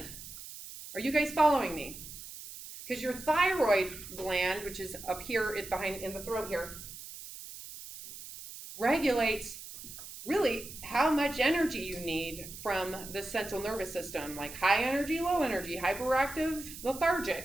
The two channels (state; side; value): noise; right; hiss, 13 dB below the sound